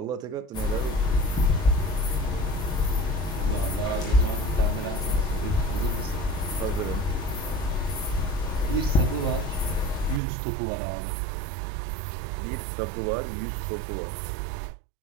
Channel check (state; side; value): drops out; left; at 10.2 s